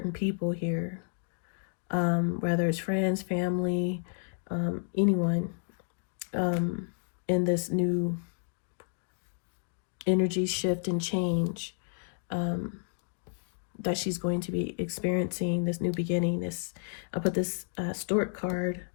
people here, whether it's friends, family, anyone, in this new energy shift and change that she's going to be experiencing, this new beginning. I put this Stork card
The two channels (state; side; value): silent; right; digital silence